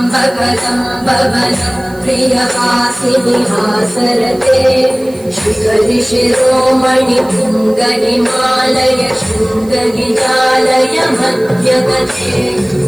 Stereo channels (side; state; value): right; noise; hiss, 24 dB below the sound